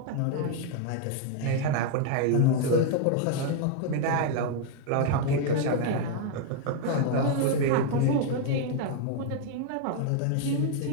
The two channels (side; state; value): both; different; correlation 0.01